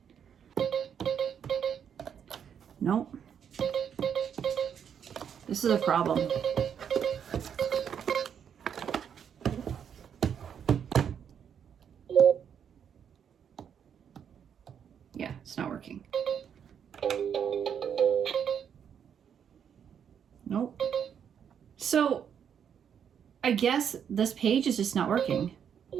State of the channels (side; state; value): left; quieter; 8.1 dB